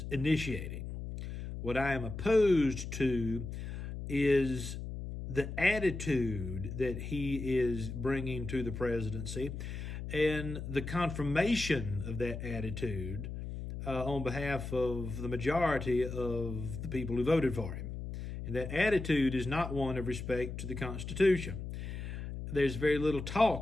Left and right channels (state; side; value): noise; left; hum, 7 dB below the sound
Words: initiating. What I am opposed to is the attitude that he is bringing to the presidency and the confirmation of that attitude on behalf of the majority of the people who voted for him. And that attitude is not one of respect to the Constitution. There's very little